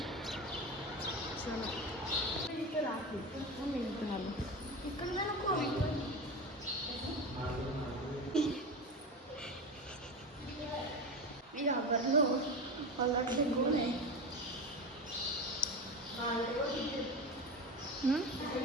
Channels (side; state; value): both; normal; correlation 0.24